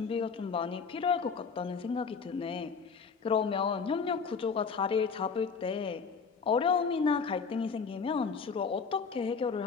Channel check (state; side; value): quieter; right; 5.5 dB